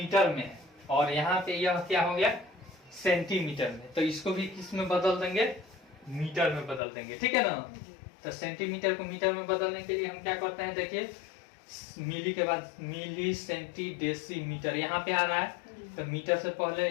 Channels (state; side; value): drops out; right; at 6.8 s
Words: में है और यहाँ पे यह क्या हो गया, सेंटीमीटर में, तो इसको भी किस में बदल देंगे, मीटर में बदल देंगे, ठीक है ना। तो सेंटीमीटर को मीटर में बदलने के लिए हम क्या करते हैं, देखिए मिली के बाद मिली, सेंटी, डेसी, मीटर यहाँ पे आ रहा है, तो मीटर से पहले